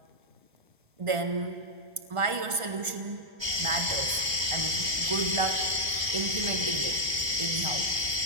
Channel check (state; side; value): late; left; 1.3 ms